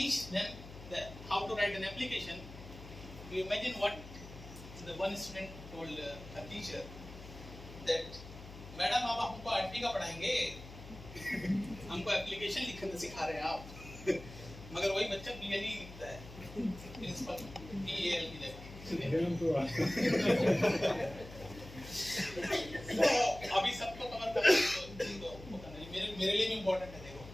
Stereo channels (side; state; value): left; noise; hum, 15 dB below the sound